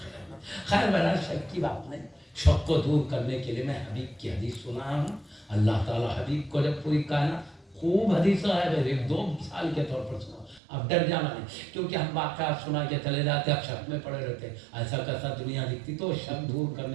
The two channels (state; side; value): drops out; left; at 10.6 s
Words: خیر بہرحال شک کی بات نہیں. شک کو دور کرنے کے لیے میں حبیب کی حدیث سنا ہوں. اللہ تعالیٰ حبیب کو جب پوری کائنات خوب حدیث ہے، 2 مثال کے طور پر سنا. اب ڈر جانا نہیں، کیونکہ ہم واقعات سنا کے چلے جاتے، اب شک میں پڑے رہتے ایسا کیسا دنیا دکھتی، تو شک دور